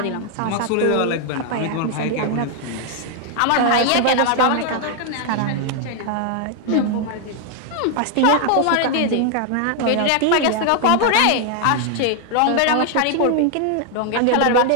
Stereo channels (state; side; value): different; both; correlation 0.00